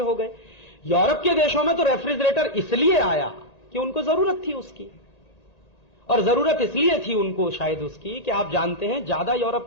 गए। यूरोप के देशों में तो रेफ्रिजरेटर इसलिए आया कि उनको जरूरत थी उसकी, और जरूरत इसलिए थी उनको शायद उसकी कि आप जानते हैं ज्यादा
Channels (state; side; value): late; right; 1.8 ms